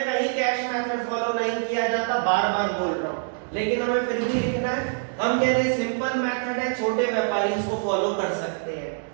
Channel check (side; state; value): left; silent; 62 dB below the other